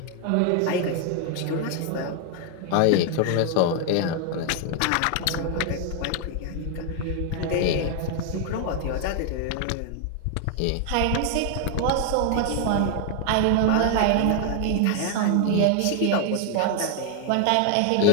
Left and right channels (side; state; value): both; different; correlation 0.00